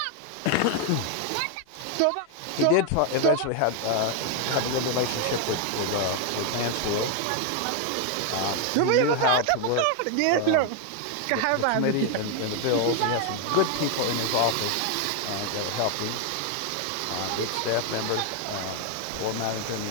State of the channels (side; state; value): both; different; correlation 0.01